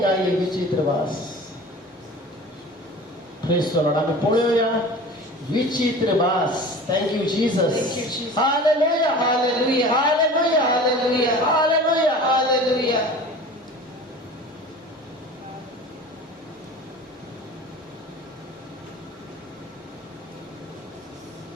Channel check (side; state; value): both; normal; correlation 0.39